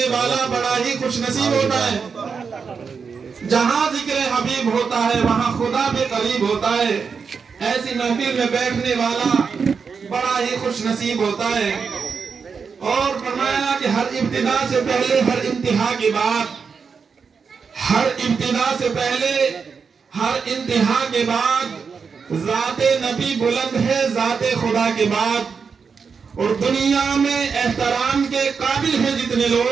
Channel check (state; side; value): quieter; left; 5.7 dB